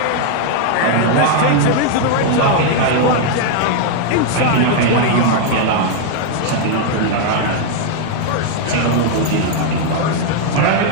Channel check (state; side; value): different; both; correlation 0.00